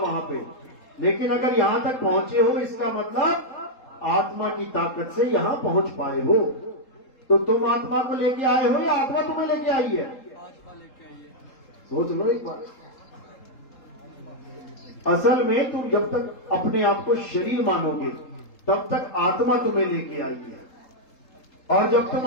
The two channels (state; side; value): late; right; 3.7 ms